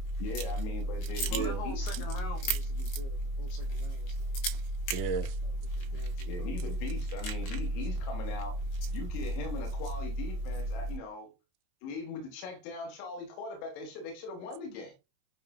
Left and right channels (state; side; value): late; right; 22 ms